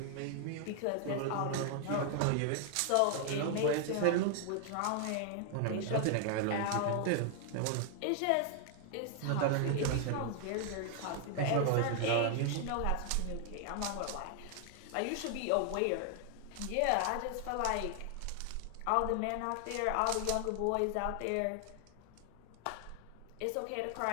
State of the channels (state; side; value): different; both; correlation 0.00